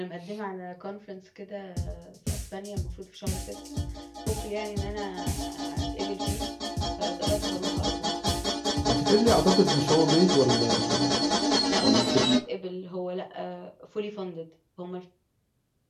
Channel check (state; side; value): identical; both; correlation 1.00